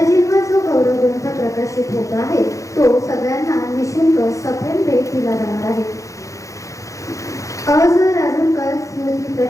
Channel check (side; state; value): right; late; 0.15 ms